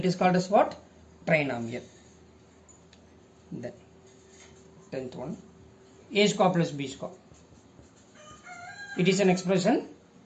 is called as what? Trinomial. Then 10th one, a square plus b square. It is an expression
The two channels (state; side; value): identical; both; correlation 1.00